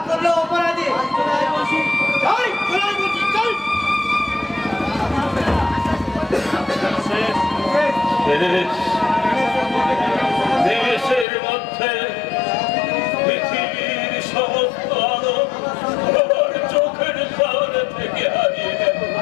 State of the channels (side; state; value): right; drops out; at 11.2 s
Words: দেশের মধ্যে পৃথিবীর সমস্ত আলো আমার চোখের সামনে থেকে হারিয়ে গেল।